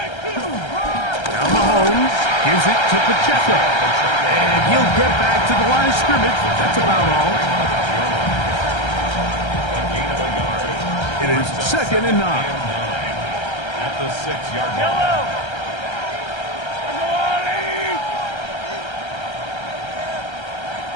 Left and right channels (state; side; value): late; right; 1.3 ms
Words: Mahomes gives it to Pacheco. And he'll get back to the line of scrimmage. That's about all. It is second and 9. At the 6-yard line.